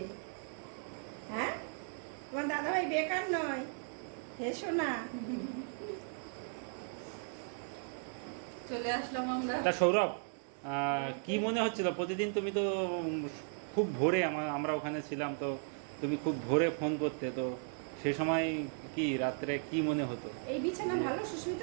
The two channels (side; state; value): left; silent; 54 dB below the other